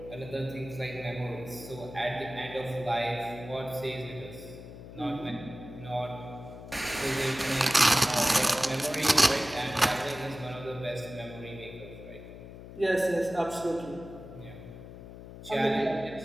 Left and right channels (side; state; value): left; noise; hum, 14 dB below the sound